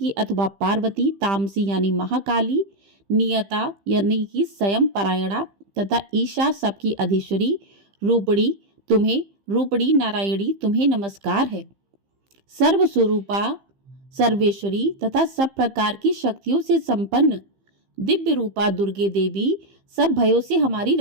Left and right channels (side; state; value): left; late; 15 ms